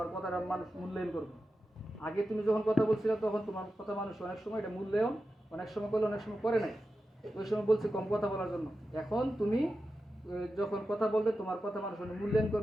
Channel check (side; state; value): both; normal; correlation 0.91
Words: কথাটা মানুষ মূল্যায়ন করবে। আগে তুমি যখন কথা বলছিলে তখন তোমার কথা মানুষ অনেক সময় এটা মূল্যায়ন অনেক সময় করলে অনেক সময় করে নাই, ওই সময় বলছে কম কথা বলার জন্য। এখন তুমি যখন কথা বলবে তোমার কথা মানুষ মূল্যায়ন